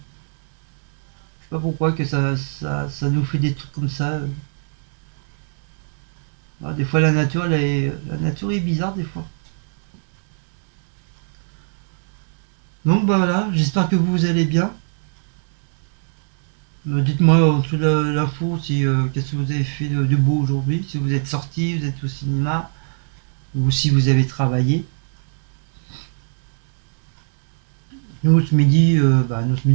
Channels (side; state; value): left; silent; digital silence